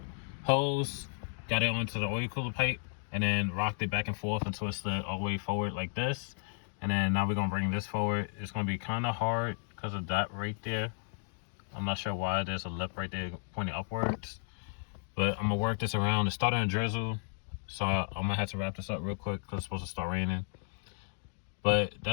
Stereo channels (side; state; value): right; silent; 55 dB below the other